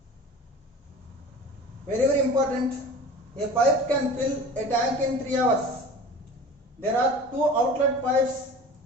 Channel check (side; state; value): both; normal; correlation 0.39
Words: Very important. A pipe can fill a tank in 3 hours. There are 2 outlet pipes.